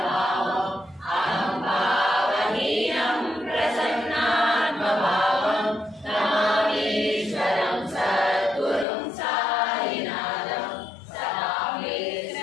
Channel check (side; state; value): right; drops out; at 8.8 s